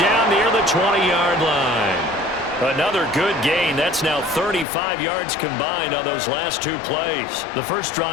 near the 20-yard line. Another good gain. That's now 35 yards combined on those last 2 plays. The first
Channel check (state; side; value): drops out; right; at 4.7 s